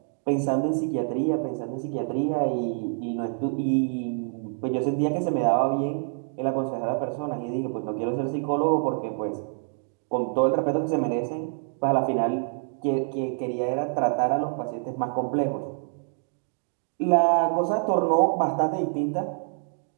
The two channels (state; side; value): silent; left; 61 dB below the other